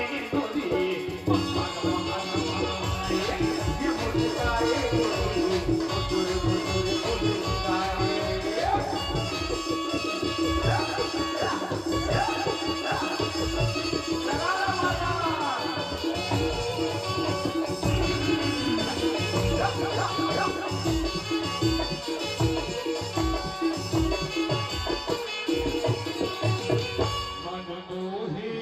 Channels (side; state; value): both; identical; correlation 1.00